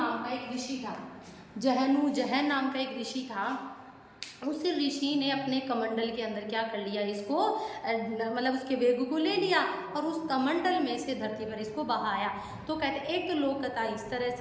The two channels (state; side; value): identical; both; correlation 1.00